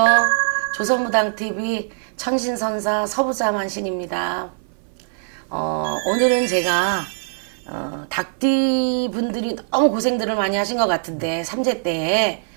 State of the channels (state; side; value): silent; left; 58 dB below the other